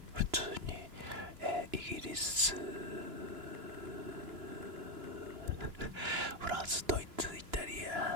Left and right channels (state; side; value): late; left; 2.9 ms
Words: 普通に、イギリス、フランス、ドイツ、イタリ